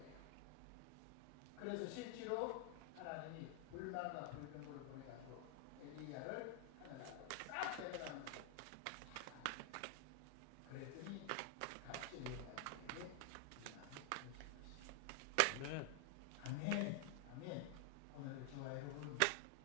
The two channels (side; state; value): both; different; correlation 0.00